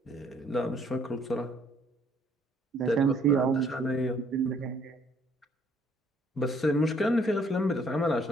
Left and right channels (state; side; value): normal; both; correlation 0.63